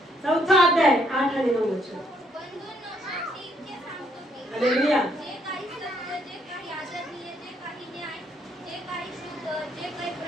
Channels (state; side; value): normal; both; correlation 0.70